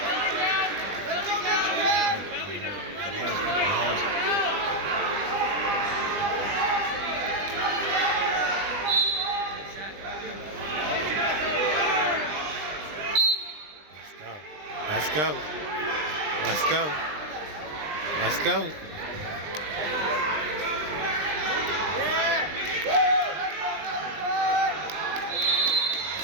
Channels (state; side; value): late; left; 20 ms